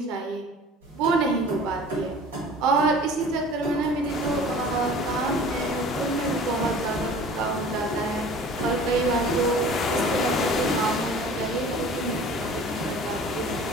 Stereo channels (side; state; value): both; normal; correlation 0.44